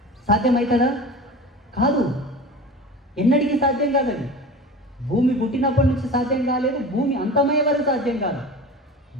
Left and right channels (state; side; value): normal; both; correlation 0.35